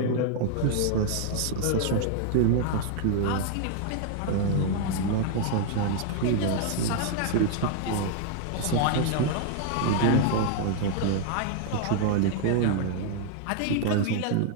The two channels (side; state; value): both; different; correlation 0.00